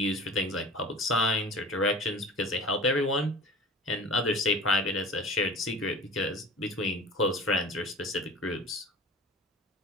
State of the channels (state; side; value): normal; both; correlation 0.39